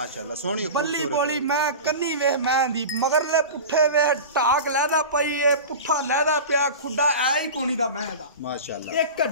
सोहनी बल्ली बोली मैं कन्नी वे मैं दी मगरले पुट्ठे वे टाक लैदा पई ए पुट्ठा लैदा पिया, खुड्डा ऐ ही कोनी दा मैं दा माशाअल्लाह। एक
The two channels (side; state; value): both; inverted; correlation -0.30